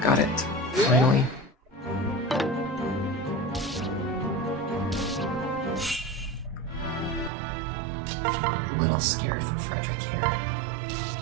Got it. Finally. A little scared for Frederick here.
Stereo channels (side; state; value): left; drops out; at 7.3 s